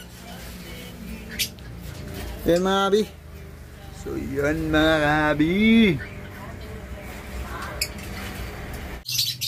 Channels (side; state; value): both; identical; correlation 1.00